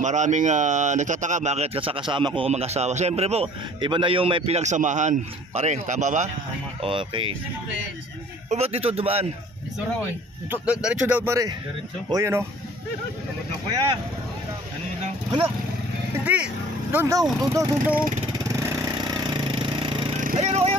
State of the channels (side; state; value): both; normal; correlation 0.51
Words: Maraming nagtataka bakit kasama ko mag-asawa. Siyempre po, iba na yung may pinagsamahan. Pare, tama ba? Okay. O ba't dito dumaan? Ito raw eh. Diretso daw pare. Diretso. O yan o. Tawag na kuya. Ano yun lang? Hala! Hindi! Doon daw! Ayan